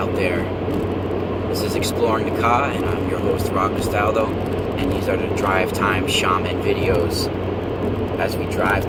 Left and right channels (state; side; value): identical; both; correlation 1.00